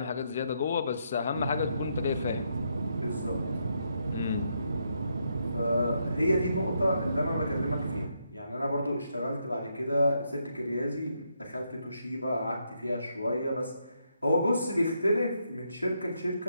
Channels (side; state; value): both; inverted; correlation -0.79